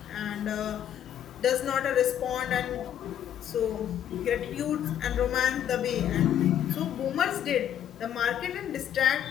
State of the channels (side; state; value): right; quieter; 10.2 dB